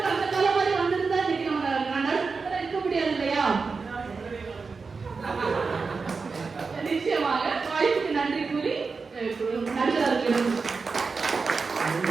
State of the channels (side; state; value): left; quieter; 4.6 dB